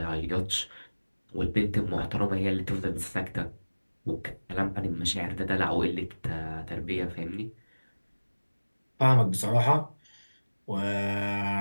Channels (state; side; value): inverted; both; correlation -1.00